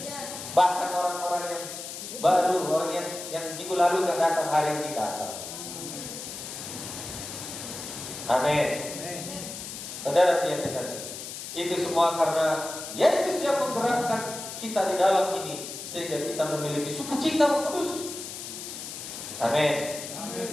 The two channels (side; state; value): left; noise; hiss, 9 dB below the sound